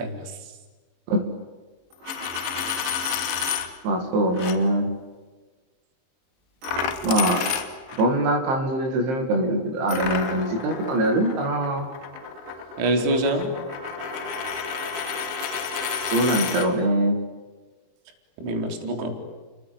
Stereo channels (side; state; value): left; late; 22 ms